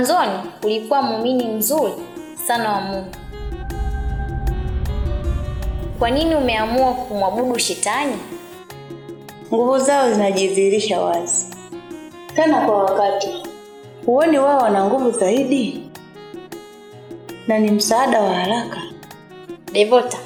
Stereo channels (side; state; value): both; identical; correlation 1.00